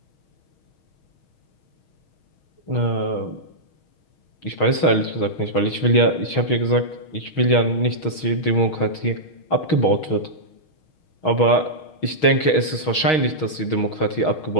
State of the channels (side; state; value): right; late; 6.4 ms